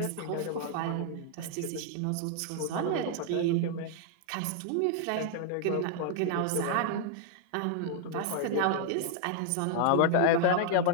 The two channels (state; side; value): different; both; correlation 0.00